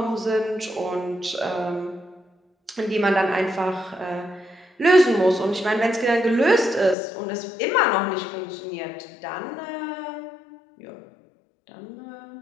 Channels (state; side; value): drops out; right; at 7.0 s